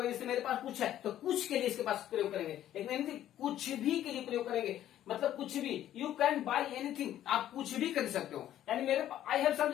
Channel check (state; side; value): quieter; right; 12.1 dB